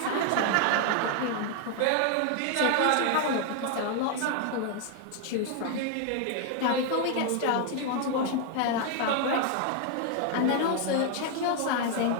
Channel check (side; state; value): both; different; correlation 0.00